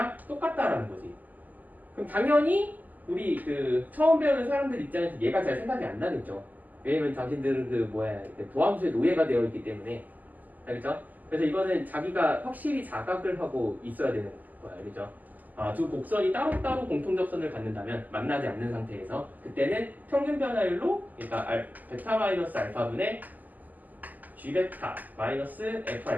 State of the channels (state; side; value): late; left; 0.082 ms